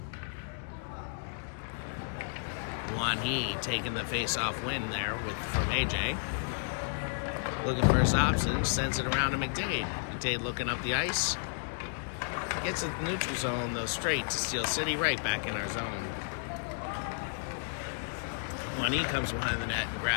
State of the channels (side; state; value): right; silent; digital silence